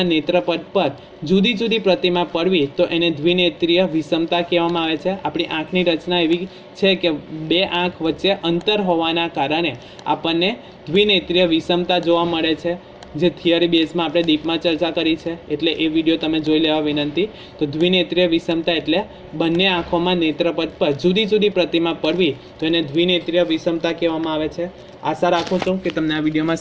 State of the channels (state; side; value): identical; both; correlation 1.00